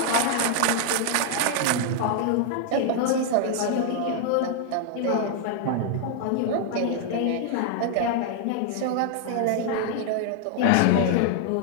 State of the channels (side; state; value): both; different; correlation 0.00